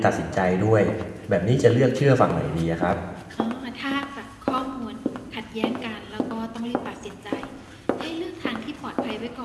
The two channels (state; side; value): identical; both; correlation 1.00